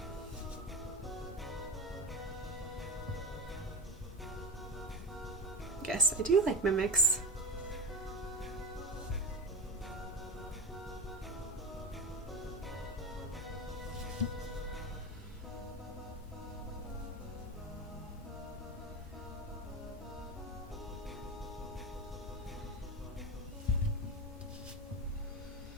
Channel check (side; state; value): both; normal; correlation 0.20